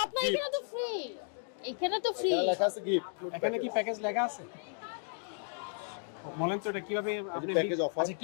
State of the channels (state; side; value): silent; right; digital silence